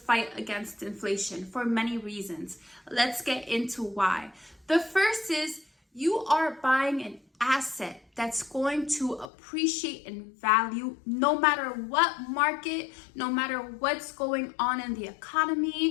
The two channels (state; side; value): drops out; right; at 9.3 s